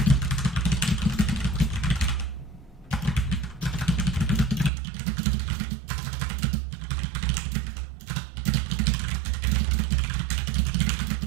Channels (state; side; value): drops out; left; at 4.7 s